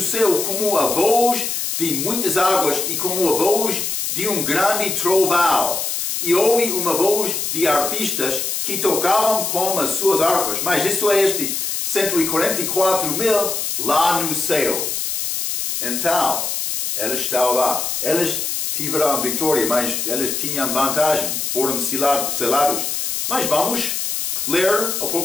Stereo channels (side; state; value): left; noise; hiss, 2 dB below the sound